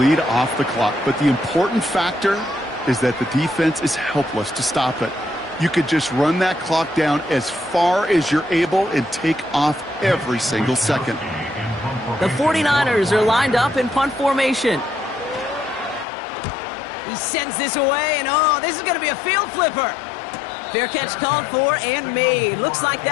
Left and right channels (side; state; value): right; drops out; at 16.1 s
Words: off the clock, but the important factor is that the defense is helpless to stop it. You could just run that clock down as far as you're able and take off every single second. The 49ers are lined up in punt formation. He sends this away, and oh, this is going to be a field flipper. Fair catch called for and made. Looks like